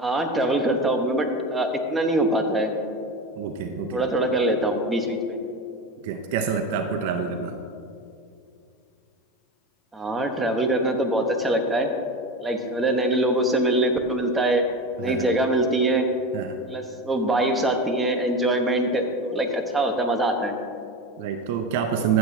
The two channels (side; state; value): both; normal; correlation 0.24